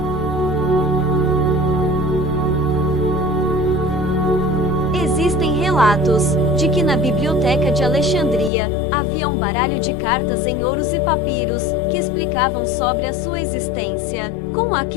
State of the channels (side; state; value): right; drops out; at 8.5 s